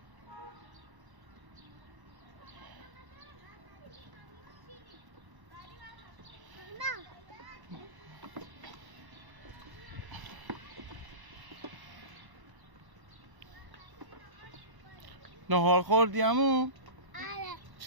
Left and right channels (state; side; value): late; left; 1.1 ms